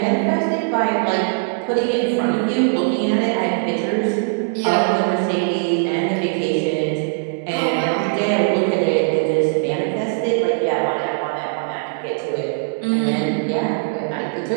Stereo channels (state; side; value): silent; left; digital silence